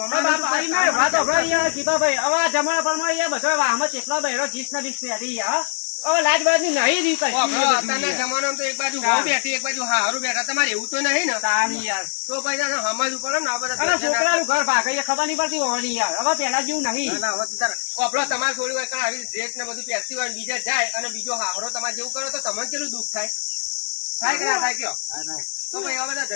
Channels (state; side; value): silent; right; 63 dB below the other